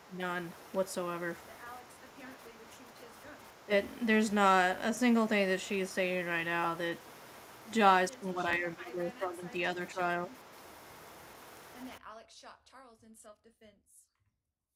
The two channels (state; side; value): identical; both; correlation 1.00